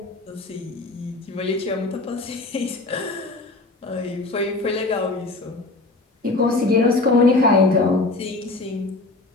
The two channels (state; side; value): quieter; right; 3.2 dB